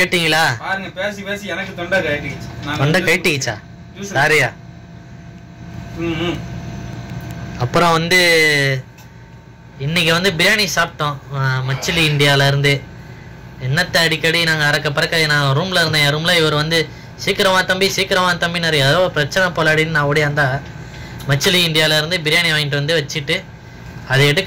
பாருங்க, பேசி பேசி எனக்கு தொண்டை கட்டிடுச்சு. தொண்டை கட்டிடுச்சா? சாரியா. அப்புறம் வந்து இன்னைக்கு வந்து பிரியாணி சாப்பிட்டோம் மச்சிலி இந்தியால இருந்து. என்னத்தை அடிக்கடி நாங்கள் அறக்க பறக்க நான் ரூம்ல இருந்தேன். என் ரூம்ல இவர் வந்து சீக்கிரமா தம்பி நிறைய ஏதோ பிரச்சனை போலாடின்னு நான் ஓடியாந்தா மச்சிலி இந்தியால இருந்து பிரியாணி வாங்கிட்டு வந்து வச்சுட்டு அதை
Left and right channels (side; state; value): both; identical; correlation 1.00